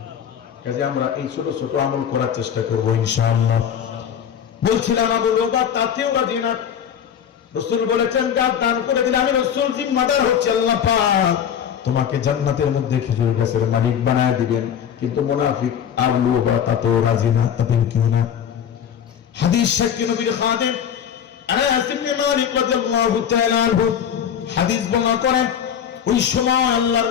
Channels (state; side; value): quieter; right; 8.6 dB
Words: কাজে আমরা এই ছোট ছোট আমল করার চেষ্টা করবো ইনশাআল্লাহ। বলছিলাম আবু লুবাব তাতেও রাজি না। রাসূল বলেছেন, গাছ দান করে দিলে আমি রাসূল জিম্মাদার হচ্ছে, আল্লাহ পাক তোমাকে জান্নাতের মধ্যে খেজুর গাছের মালিক বানায় দিবেন। কিন্তু মুনাফিক আবু লুবাব তাতেও রাজি না। তাতে কি না? হাদিস সাক্ষী নবীর খাদেম আনাস ইবনে মালিক রাদিয়াল্লাহু তাআলা আনহু হাদিস বর্ণনা করেন, ওই সময় আল্লাহর